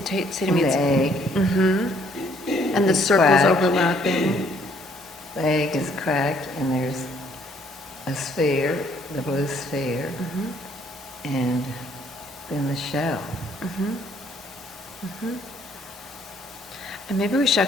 And me the it's... egg. And the is circles cracked. overlapping. The egg is cracked, and there's a sphere, the blue sphere, and then the shell. And maybe we should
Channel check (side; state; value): both; normal; correlation 0.64